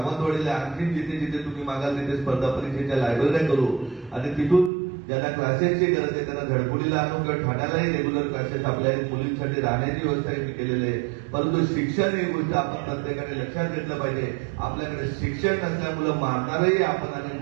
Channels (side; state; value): left; drops out; at 4.7 s